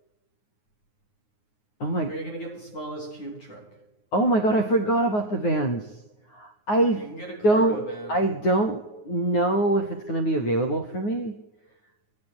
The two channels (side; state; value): right; late; 9.5 ms